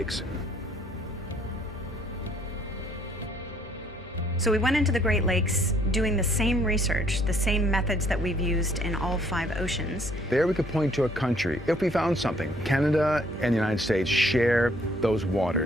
So we went into the Great Lakes doing the same research, the same methods that we've used in all 5 oceans. There we could point to a country if we found something. Canada and the United States share those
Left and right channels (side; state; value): both; normal; correlation 0.63